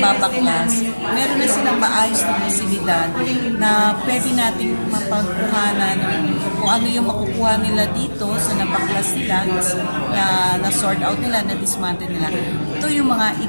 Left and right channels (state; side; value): inverted; both; correlation -1.00